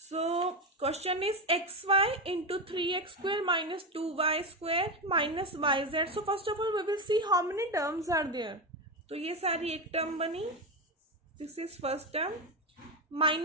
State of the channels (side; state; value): both; normal; correlation 0.14